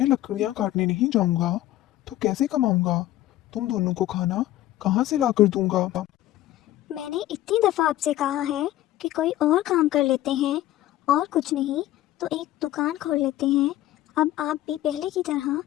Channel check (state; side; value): quieter; right; 14.6 dB